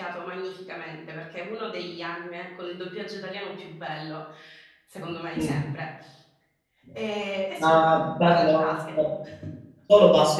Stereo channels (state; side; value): identical; both; correlation 1.00